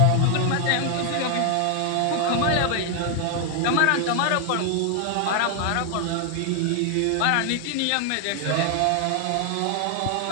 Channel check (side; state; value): both; different; correlation 0.00